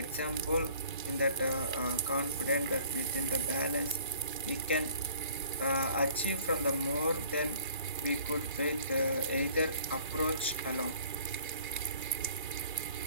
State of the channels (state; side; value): inverted; both; correlation -0.54